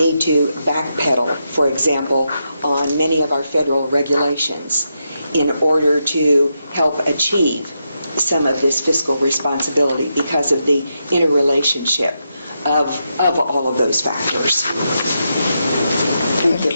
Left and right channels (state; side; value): inverted; both; correlation -0.84